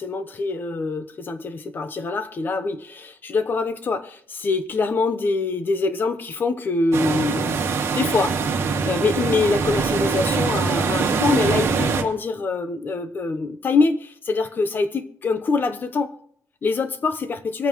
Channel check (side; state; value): both; normal; correlation 0.70